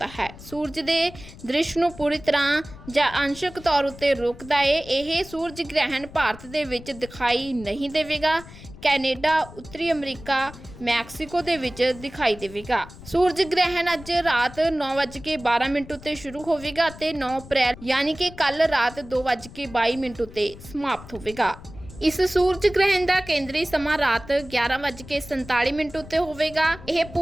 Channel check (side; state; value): left; noise; rumble, 17 dB below the sound